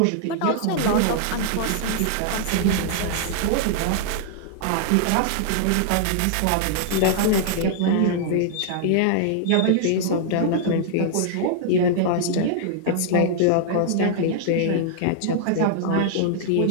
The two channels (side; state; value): both; different; correlation -0.01